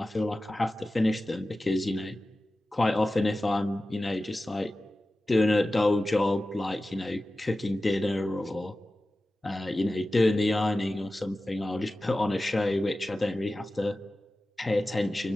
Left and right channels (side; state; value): both; normal; correlation 0.95